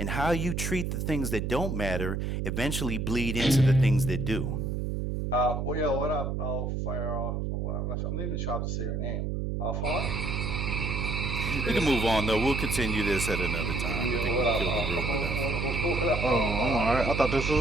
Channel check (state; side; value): noise; right; hum, 1 dB below the sound